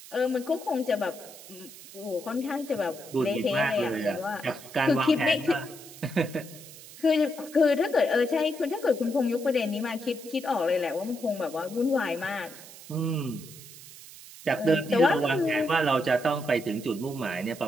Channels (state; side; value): noise; right; hiss, 17 dB below the sound